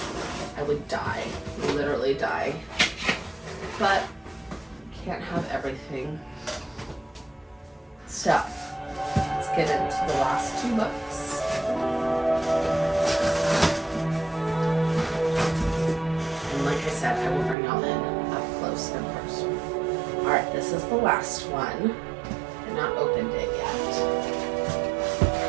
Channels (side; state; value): left; drops out; at 17.6 s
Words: I would die, literally die. But can't have everything. So let's get into the last two books. And like I said, I will bring y'all in up close and personal. All right, this is the last one. I've not opened it yet.